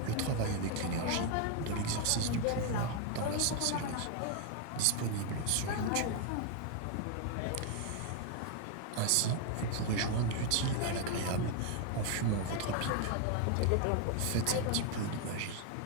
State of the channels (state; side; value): different; both; correlation 0.00